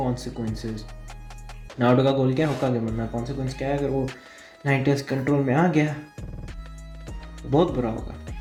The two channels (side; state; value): both; identical; correlation 1.00